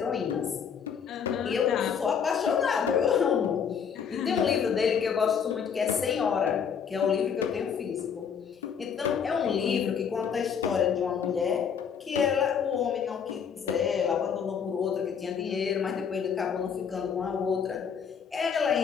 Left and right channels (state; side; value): quieter; right; 7.1 dB